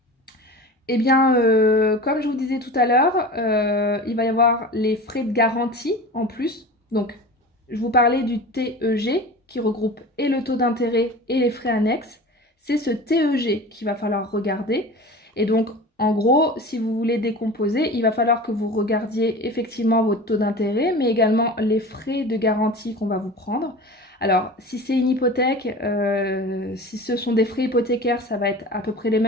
Eh bien, comme je vous disais tout à l'heure, il va y avoir les frais de garantie en plus. Donc, je vous parlais du TEG qui regroupe et le taux d'intérêt et les frais annexes. C'est ce TEG qu'il va falloir regarder. Et donc, en gros, si vous voulez décomposer, il va falloir que vous regardiez effectivement votre taux d'intérêt, mais également les frais de garantie qu'on va vous prendre. Alors, si c'est une hypothèque, si ce sont des frais hypothécaires, ça va être à peu près les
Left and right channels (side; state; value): both; normal; correlation 0.35